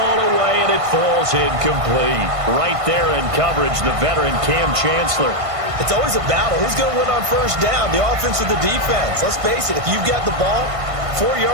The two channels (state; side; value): late; left; 1.5 ms